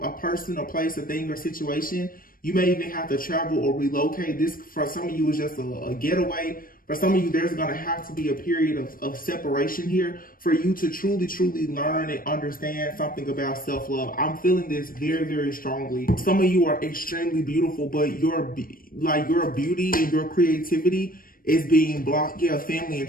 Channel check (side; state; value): right; late; 0.41 ms